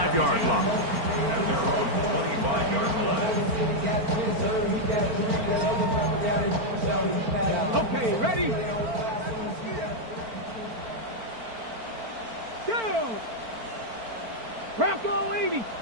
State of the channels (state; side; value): late; left; 4.4 ms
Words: line. At their own 25-yard line. Okay, ready? Go! Bronco 80.